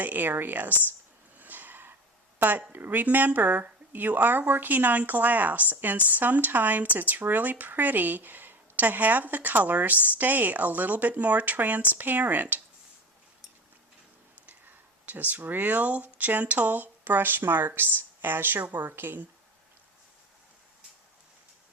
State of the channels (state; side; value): normal; both; correlation 0.32